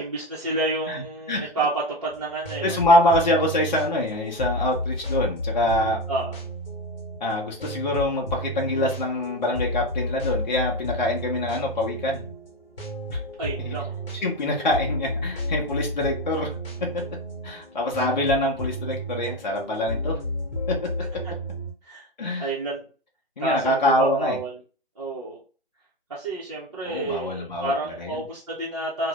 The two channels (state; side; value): normal; both; correlation 0.18